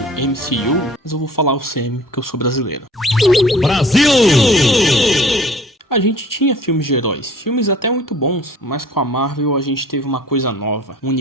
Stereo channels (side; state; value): both; normal; correlation 0.50